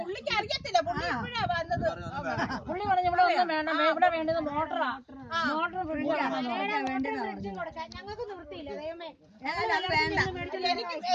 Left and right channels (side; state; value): both; identical; correlation 1.00